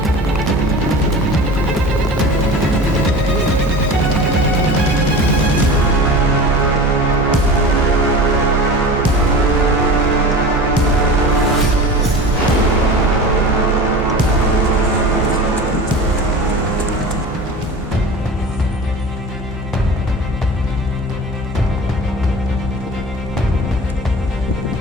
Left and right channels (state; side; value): normal; both; correlation 0.35